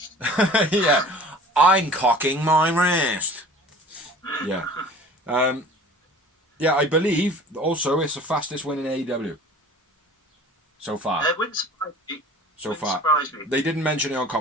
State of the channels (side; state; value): both; normal; correlation 0.44